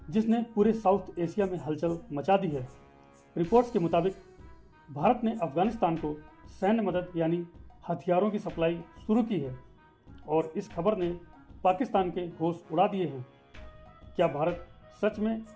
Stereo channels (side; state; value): both; identical; correlation 1.00